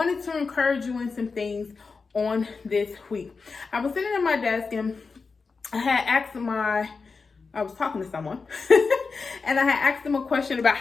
to encourage you in some things on this week. I was sitting at my desk, and I was talking to someone and I had asked them a question about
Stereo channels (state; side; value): quieter; right; 4.6 dB